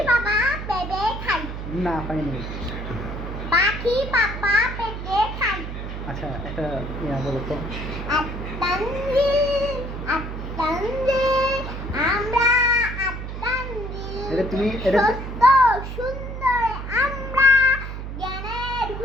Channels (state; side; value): noise; right; hum, 7 dB below the sound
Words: বাবা পেঁপে খায়। না পাইনি। পাখি বাবা পেঁপে খায়। আচ্ছা একটা বলো তো। আত্মাঞ্জিল আত্মাঞ্জিল আমরা আত্মাঞ্জিল এটা তুমি এটা সত্য সুন্দর আমরা জ্ঞানের